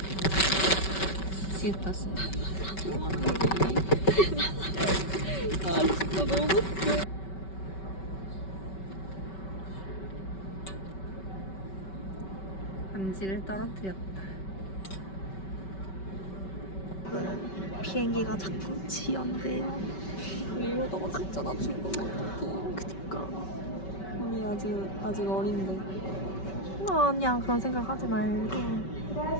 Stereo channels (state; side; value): late; right; 5.2 ms